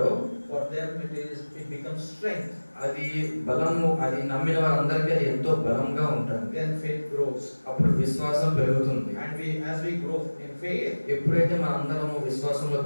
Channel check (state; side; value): inverted; both; correlation -1.00